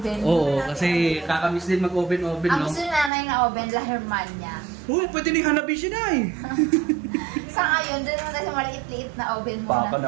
Oo, kasi kakamiss din mag-oven-oven, Ang no? gusto ni nanay na oven, La Hermania. Uy, pwede ni Hanabishi, Nay. Sa ngayon, doon naman tayo sa maliit-liit na oven muna. Papa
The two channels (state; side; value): drops out; left; at 3.1 s